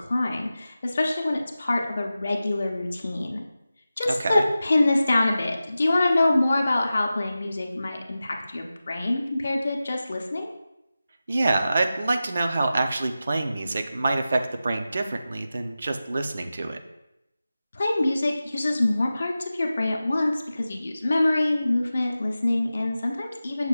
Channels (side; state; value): both; inverted; correlation -0.94